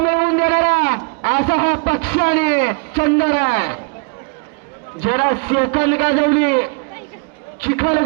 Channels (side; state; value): left; quieter; 35.4 dB